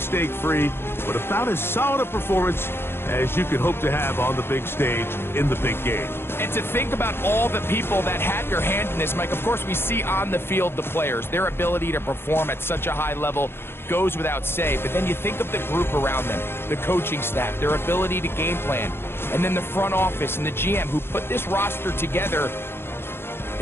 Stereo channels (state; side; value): late; right; 0.11 ms